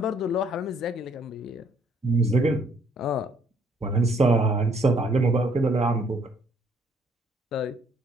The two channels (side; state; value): both; normal; correlation 0.65